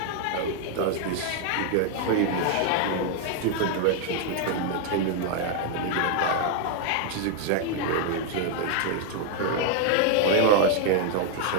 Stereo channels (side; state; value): both; different; correlation 0.00